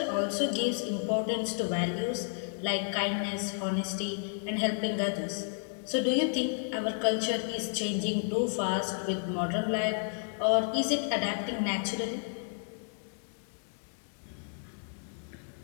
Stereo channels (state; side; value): silent; right; digital silence